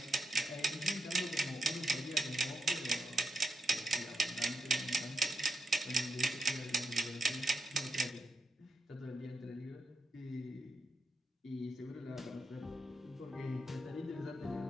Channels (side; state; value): both; normal; correlation 0.85